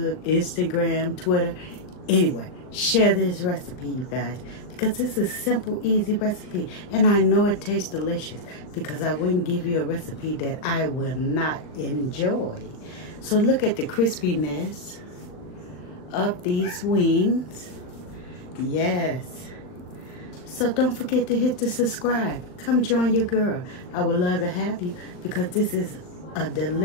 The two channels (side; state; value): right; late; 39 ms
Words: Instagram, Twitter. Anyway, share this recipe, you guys, because this is a simple, easy recipe. And I know it tastes delicious because I wouldn't give you a recipe that I will not enjoy. So look at the crispiness of these wings. Yes. So don't forget to hit the subscribe. Come join your girl. I would love to have you because this is a